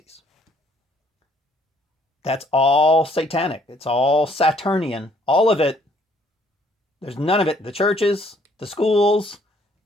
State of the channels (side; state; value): both; normal; correlation 0.63